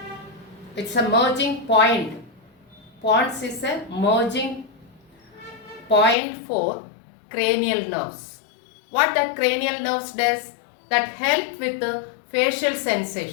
It's a merging point. Pons is a merging point for cranial nerves. What that cranial nerves does? That help with the facial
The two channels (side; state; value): right; drops out; at 6.2 s